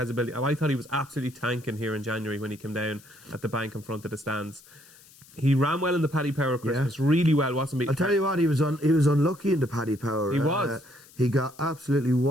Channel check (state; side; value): noise; left; hiss, 24 dB below the sound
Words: ability. And I thought he was absolutely tanking here in January when he came down at the bank in front of the stands. He ran well in the Paddy Power Christmas, really well, wasn't he? I'll tell you what, he was unlucky in the Paddy Power. He was. He got absolutely